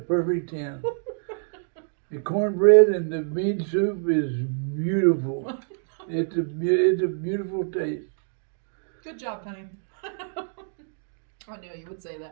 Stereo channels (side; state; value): left; silent; digital silence